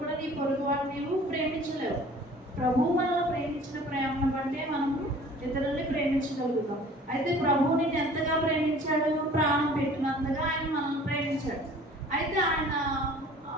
కూడా నీ పొరుగువాడు నీవు ప్రేమించలేవు. ప్రభువు మనల్ని ప్రేమించిన ప్రేమను బట్టే మనము ఇతరుల్ని ప్రేమించగలుగుతాం. అయితే ప్రభువు నిన్ను ఎంతగా ప్రేమించాడు? ప్రాణం పెట్టినంతగా ఆయన మనల్ని ప్రేమించాడు. అయితే ఆయన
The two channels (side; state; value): both; normal; correlation 0.48